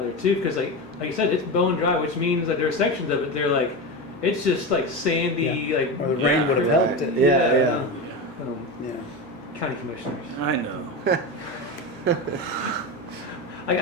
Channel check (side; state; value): both; normal; correlation 0.20